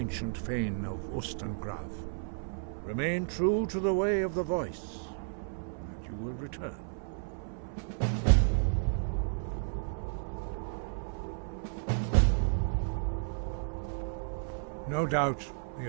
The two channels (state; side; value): silent; left; 56 dB below the other